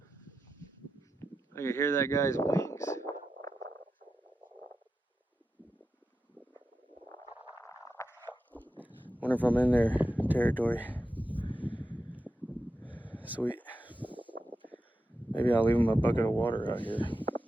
I can hear that guy's wings. Wonder if I'm in their territory. Sweet. Maybe I'll leave them a bucket of water out here.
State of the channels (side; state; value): both; normal; correlation 0.90